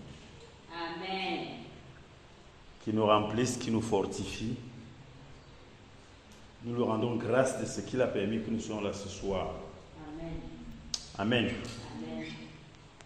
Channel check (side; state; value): both; identical; correlation 1.00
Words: Amen. Qui nous remplisse, qui nous fortifie. Nous lui rendons grâce de ce qu'il a permis que nous soyons là ce soir. Amen. Amen. Amen.